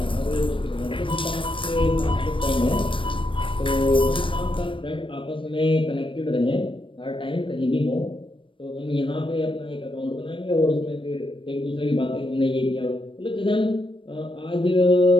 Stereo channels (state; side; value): late; right; 0.25 ms